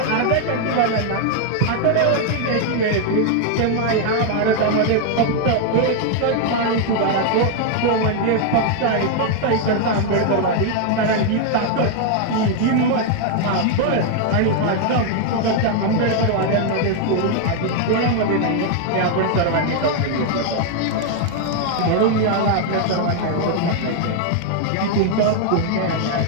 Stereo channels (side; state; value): both; different; correlation 0.00